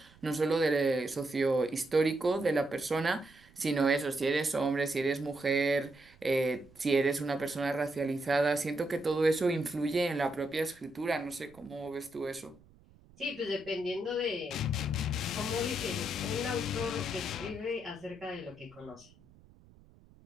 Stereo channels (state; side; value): noise; right; rumble, 26 dB below the sound